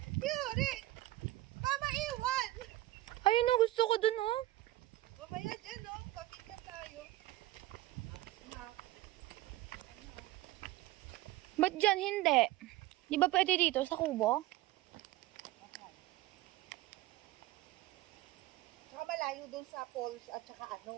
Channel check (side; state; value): left; quieter; 16.6 dB